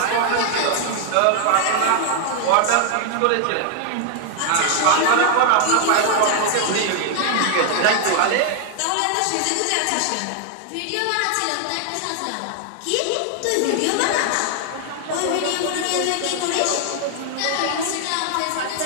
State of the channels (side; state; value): both; different; correlation 0.00